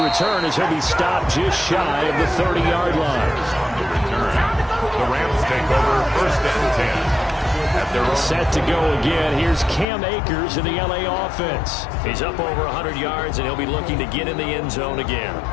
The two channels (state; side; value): drops out; right; at 9.9 s